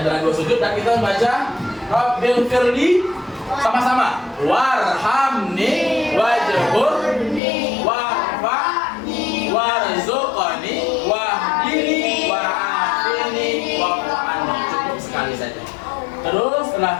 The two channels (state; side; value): drops out; right; at 7.4 s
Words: dua sujud dan kita membaca Rabbil firli sama-sama. Warhamni wajburni warfa'ni warzuqni wahdini wa'afini wa'afani. Cukup sekali saja. Terus